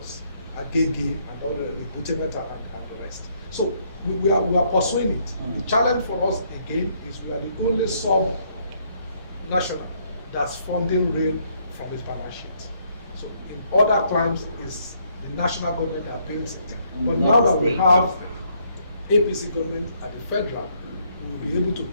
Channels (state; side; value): inverted; both; correlation -0.70